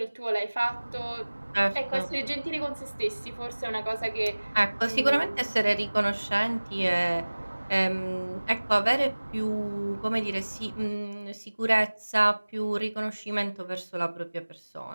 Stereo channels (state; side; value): inverted; both; correlation -1.00